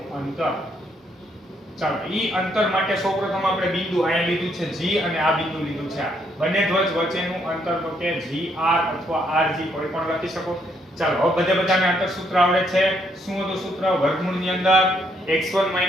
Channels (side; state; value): both; normal; correlation 0.72